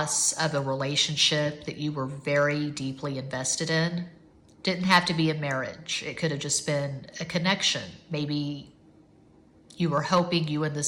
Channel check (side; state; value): both; identical; correlation 1.00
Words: of a relationship that you were very deeply invested in. Didn't have to be a marriage. It could have just been a connection. Maybe you were hoping you and